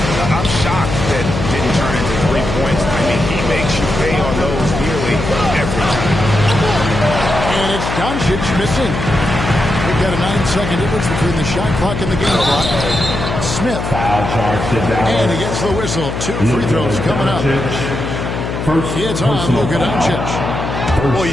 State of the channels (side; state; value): left; noise; hum, 4 dB below the sound